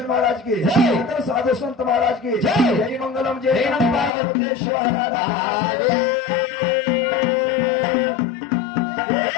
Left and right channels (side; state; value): right; drops out; at 4.1 s